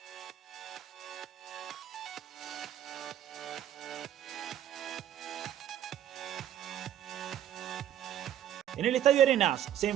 En el Estadio Arenas se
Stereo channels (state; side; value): quieter; left; 11.0 dB